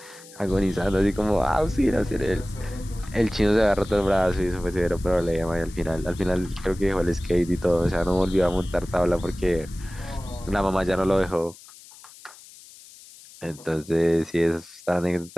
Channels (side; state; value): left; noise; hiss, 21 dB below the sound